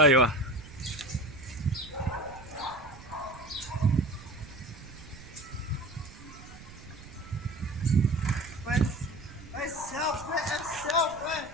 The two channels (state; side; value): noise; right; rumble, 17 dB below the sound